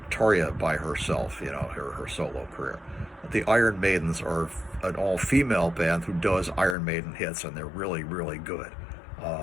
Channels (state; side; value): drops out; right; at 6.8 s